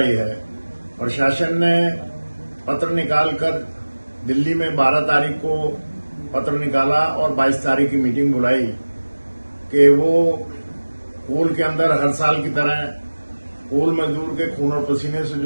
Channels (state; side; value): inverted; both; correlation -1.00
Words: है। प्रशासन ने पत्र निकालकर दिल्ली में 12 तारीख को पत्र निकाला और 22 तारीख की मीटिंग बुलाई कि वो कोल के अंदर हर साल की तरह कोल मजदूर के खून और पसीने से